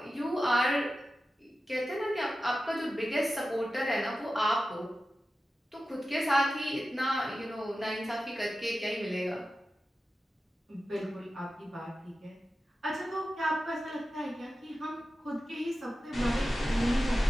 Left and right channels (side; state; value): both; normal; correlation 0.93